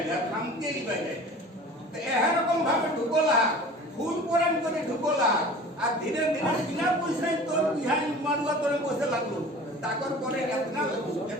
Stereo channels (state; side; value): normal; both; correlation 0.41